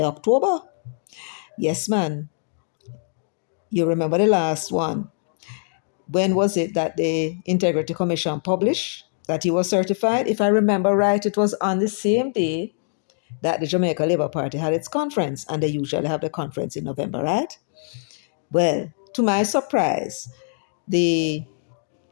October. Yes, man. You remember the last one. When was it that the Integrity Commission published that he was certified? If I remember right, it was on the same day that the Jamaica Labour Party had its conference, and they usually have the conference in November, right? Well, to my surprise, the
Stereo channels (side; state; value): right; silent; digital silence